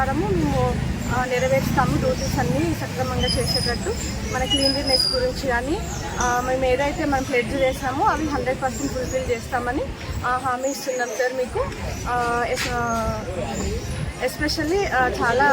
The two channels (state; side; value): identical; both; correlation 1.00